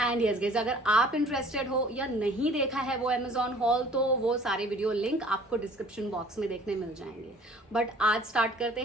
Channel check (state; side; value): normal; both; correlation 0.52